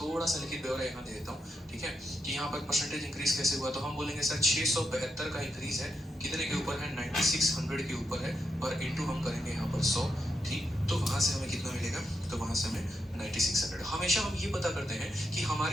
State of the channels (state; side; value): normal; both; correlation 0.83